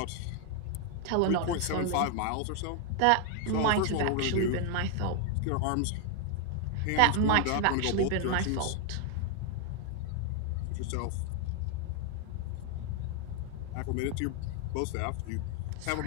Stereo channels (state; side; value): different; both; correlation 0.01